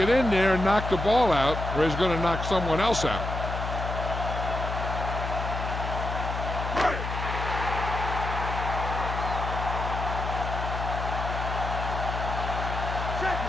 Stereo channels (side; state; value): left; noise; hum, 4 dB below the sound